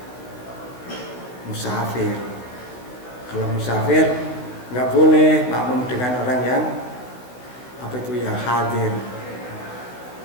musafir. Kalau musafir nggak boleh makmum dengan orang yang yang hadir.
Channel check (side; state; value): right; late; 16 ms